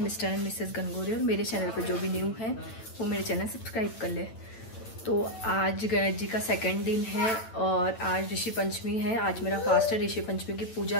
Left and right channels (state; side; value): late; right; 9.0 ms